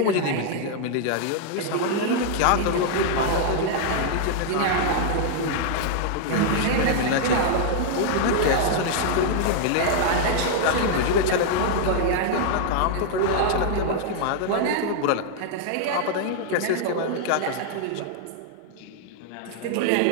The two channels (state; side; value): different; both; correlation -0.01